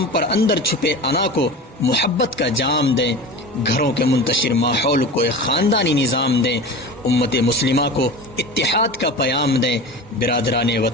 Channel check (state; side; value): normal; both; correlation 0.32